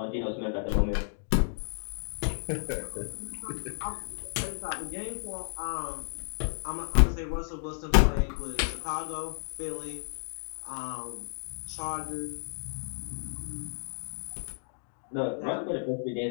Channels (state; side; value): silent; right; digital silence